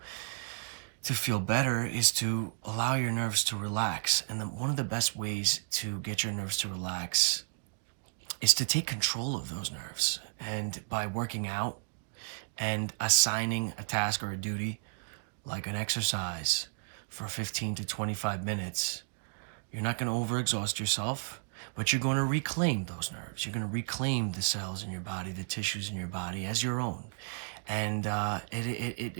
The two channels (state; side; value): silent; left; digital silence